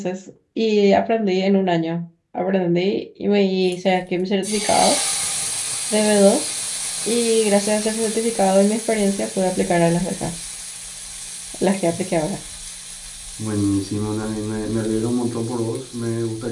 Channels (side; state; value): both; identical; correlation 1.00